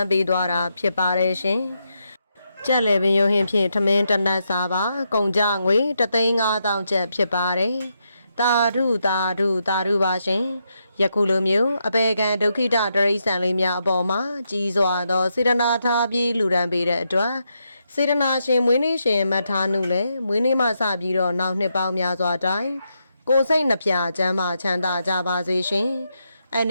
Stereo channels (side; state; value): both; inverted; correlation -0.82